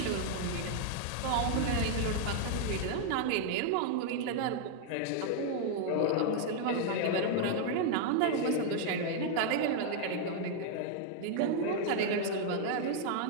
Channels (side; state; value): both; different; correlation 0.00